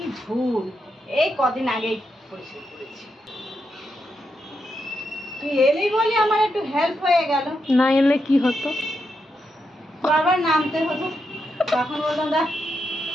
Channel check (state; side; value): normal; both; correlation 0.84